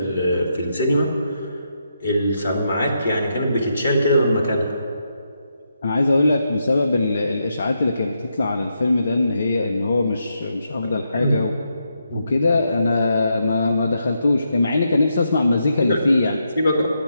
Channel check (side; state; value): both; inverted; correlation -0.82